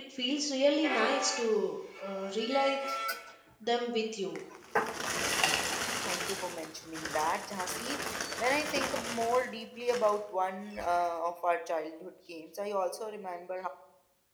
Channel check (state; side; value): identical; both; correlation 1.00